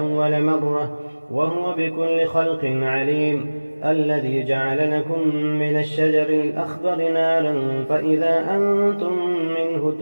مرة وهو بكل خلق عليم الذي جعل لكم من الشجر الأخضر نارا فإذا أنتم منه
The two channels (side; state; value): both; inverted; correlation -1.00